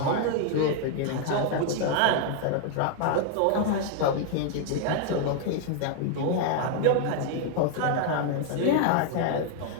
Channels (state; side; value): different; both; correlation 0.00